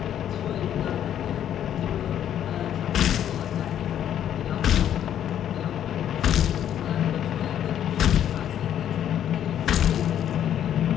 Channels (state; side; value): quieter; right; 10.3 dB